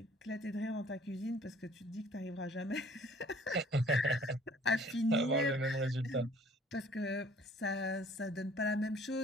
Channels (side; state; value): both; normal; correlation 0.54